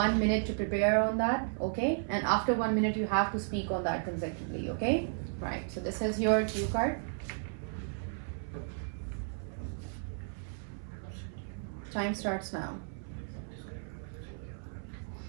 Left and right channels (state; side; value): silent; left; 55 dB below the other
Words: minute to prepare on that. Okay, and after 1 minute you have to speak on that consecutively. Okay, right. So this is your cue card. Time starts now.